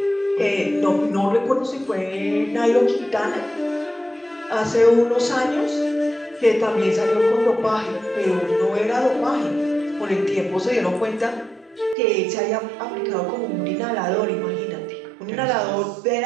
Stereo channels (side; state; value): left; drops out; at 12.0 s